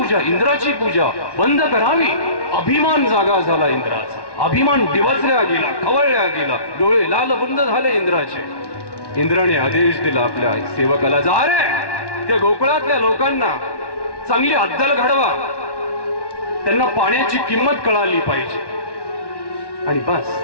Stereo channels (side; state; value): right; late; 1.1 ms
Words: इंद्राची पूजा बंद करावी. अभिमान जागा झाला इंद्राचा, अभिमान डिवचल्या गेला, खवळल्या गेला, डोळे लाल बंद झाले इंद्राचे. इंद्राने आदेश दिला आपल्या सेवकाला, जा रे त्या गोकुळातल्या लोकांना चांगली अद्दल घडवा, त्यांना पाण्याची किंमत कळाली पाहिजे. आणि बस